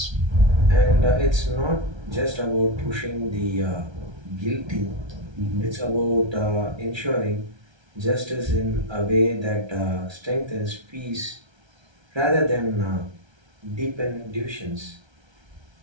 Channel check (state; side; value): late; left; 1.3 ms